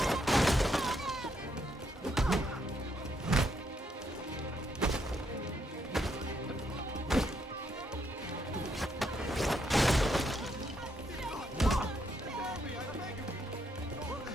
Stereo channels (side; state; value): both; normal; correlation 0.76